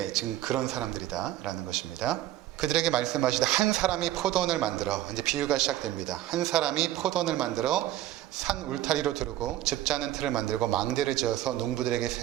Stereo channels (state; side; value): quieter; left; 14.1 dB